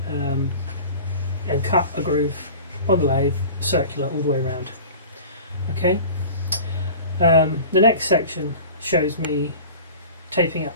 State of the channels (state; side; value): inverted; both; correlation -0.39